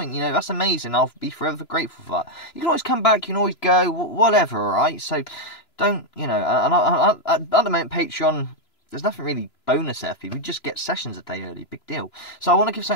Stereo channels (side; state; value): right; late; 3.0 ms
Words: You know, that's amazing. I'll be forever grateful for that. You can always come back. You can always go. Whatever. All right. So don't, you know. And at the moment, Patreon. There's nothing really bonus there for you. We just get sessions a day early. Big deal. So I want to give